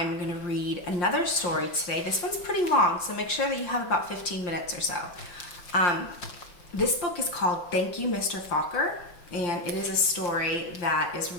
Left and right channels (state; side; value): late; right; 5.7 ms